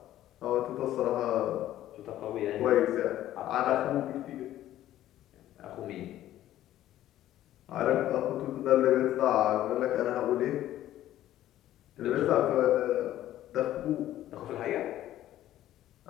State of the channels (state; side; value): quieter; right; 13.2 dB